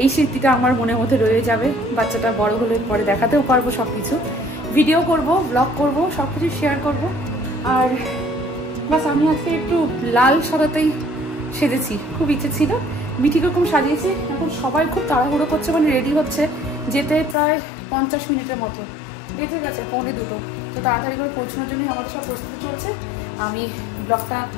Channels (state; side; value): drops out; right; at 17.4 s